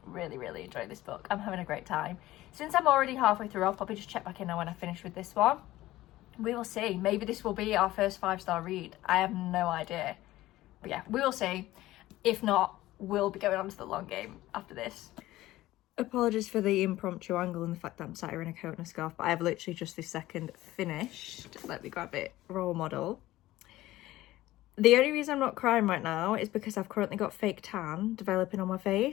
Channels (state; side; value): quieter; right; 16.4 dB